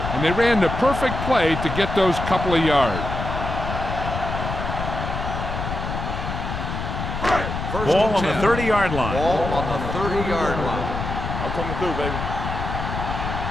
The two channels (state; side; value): noise; left; rumble, 4 dB below the sound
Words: And they ran the perfect play to get those couple of yards. Ball on the 30-yard line. Ball on the 30-yard line. I'm coming through, baby.